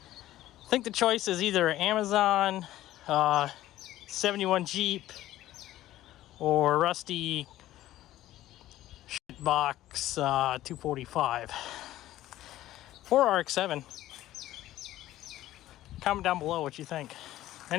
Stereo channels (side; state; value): right; quieter; 14.5 dB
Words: think the choice is either Amazon, 71 Jeep, or rusty box 245 or RX-7. Comment down below what you think.